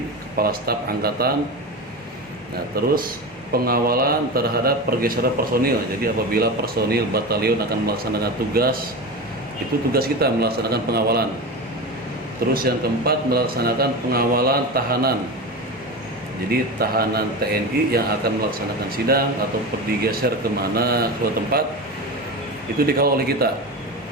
Kepala Staf Angkatan. Nah, terus pengawalan terhadap pergeseran personil. Jadi apabila personil batalion akan melaksanakan tugas, itu tugas kita melaksanakan pengawalan. Terus yang keempat, melaksanakan pengawalan tahanan. Jadi tahanan TNI yang akan melaksanakan sidang atau digeser kemana ke tempat, itu dikawal oleh kita.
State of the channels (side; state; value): both; normal; correlation 0.24